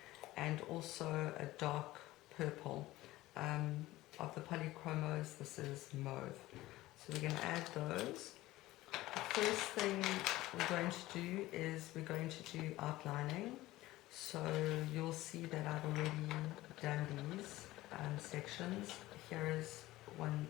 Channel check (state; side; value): quieter; right; 17.4 dB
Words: and also a dark purple. Of the polychromos, this is mauve. So we're going to add those. The first thing we're going to do is we're going to do outlining. So you'll see that I've already done these sections. Here is one